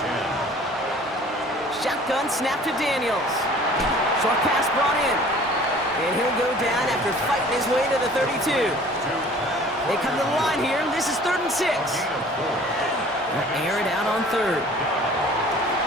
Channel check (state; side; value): normal; both; correlation 0.49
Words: 10. Shotgun snap to Daniels. Short pass brought in. And he'll go down after fighting his way to the 32. They come to the line here. This is 3rd and 6. They'll air it out on 3rd.